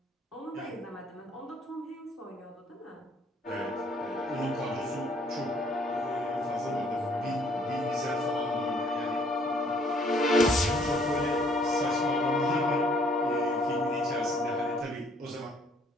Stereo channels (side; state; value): both; normal; correlation 0.63